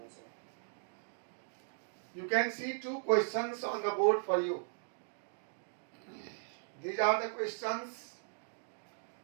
sir. You can see two questions on the board for you. These are the questions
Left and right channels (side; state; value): left; silent; digital silence